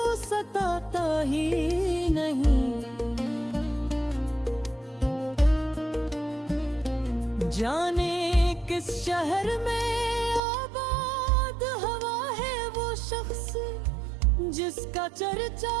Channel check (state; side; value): drops out; left; at 10.4 s